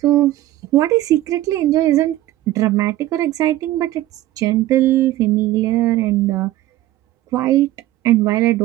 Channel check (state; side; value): quieter; left; 15.1 dB